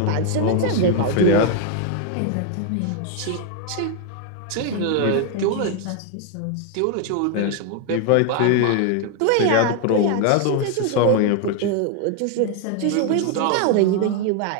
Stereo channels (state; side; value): different; both; correlation 0.01